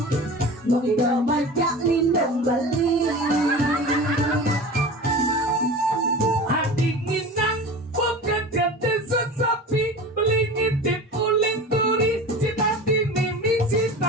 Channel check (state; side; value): normal; both; correlation 0.34